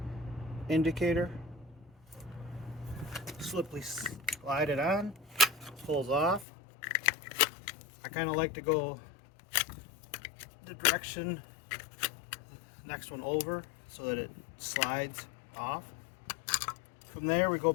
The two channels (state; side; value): drops out; right; at 6.5 s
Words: indicator. Sliply slide it on, pulls off. I kind of like to go the direction next one over so that it slides off. From there we go